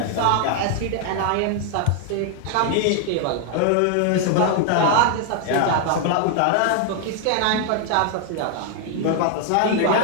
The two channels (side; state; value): both; different; correlation 0.00